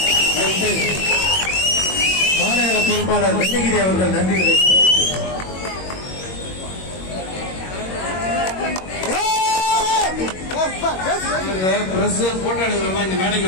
நன்றி. மாநகர பொறுப்பாளர் வெங்ககிரி அவர்கள் நன்றி. பிரஸ் போட்டோ எடுக்கிறோமா இந்த மேடைக்கு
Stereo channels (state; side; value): late; right; 22 ms